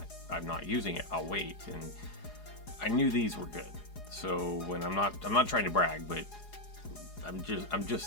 using it. I'll wait. And I knew these were good. So when I'm not trying to brag, but I'm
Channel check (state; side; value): late; right; 4.8 ms